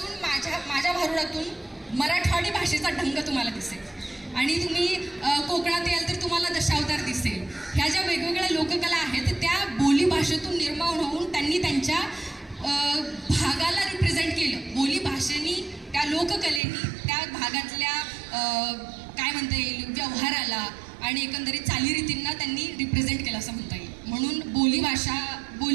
माझ्या भारुडातून मराठवाडी भाषेचा ढंग तुम्हाला दिसेल. आणि तुम्ही कोकणात याल तर तुम्हाला दशावतार दिसेल. ह्या ज्या वेगवेगळ्या लोककला आहेत त्या बोली भाषेतून निर्माण होऊन त्यांनी त्यांच्या भागाला रिप्रेझेंट केलं. बोली भाषेनी, त्या लोककलेनी त्या भागातल्या काय म्हणता येईल व्यवहाराला आणि एकंदरीत चालीरीतींना त्यांनी रिप्रेझेंट केलं असं म्हणता येईल. म्हणून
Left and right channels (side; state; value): left; drops out; at 16.6 s